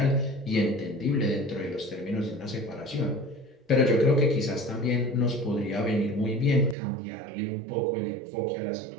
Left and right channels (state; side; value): drops out; left; at 6.8 s